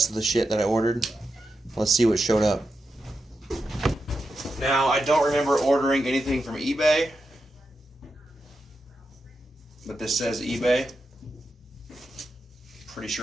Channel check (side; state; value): both; normal; correlation 0.88